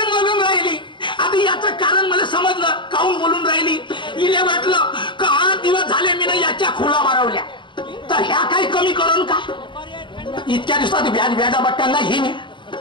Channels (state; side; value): late; right; 0.23 ms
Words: बोलून राहिली. आता याचं कारण मला समजलं. काहून बोलून राहिली. इले वाटलं का 8 दिवस झाले मी ना याच्या खोला मारवल्या तर ह्या काही कमी करून का. इतक्या दिवसात व्याजा बट्ट्यांना येईनच